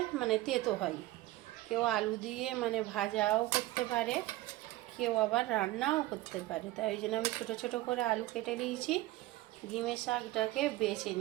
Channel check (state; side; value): quieter; left; 17.3 dB